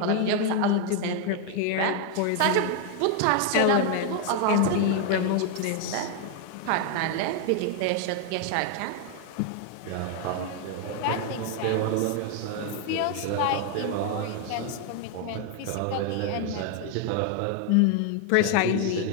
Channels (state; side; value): different; both; correlation 0.01